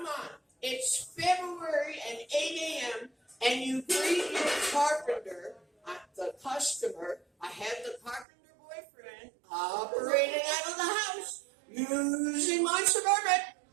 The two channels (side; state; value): left; drops out; at 8.2 s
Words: on. It's February and 8 a.m. and you greet your carpenter, the customer. I have the carpenter boyfriend operating out of the house using my Suburban,